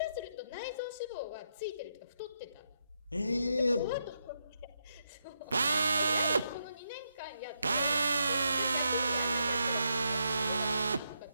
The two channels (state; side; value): inverted; both; correlation -0.81